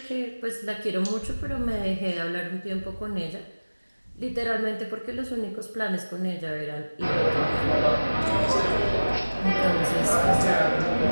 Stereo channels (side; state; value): both; inverted; correlation -1.00